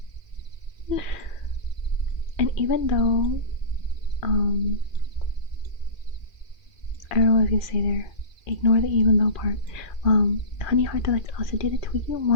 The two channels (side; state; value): right; late; 2.4 ms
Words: And even though I don't know what I was gonna say there. Ignore the even though part. Honey Heart Delights also did a Twiggy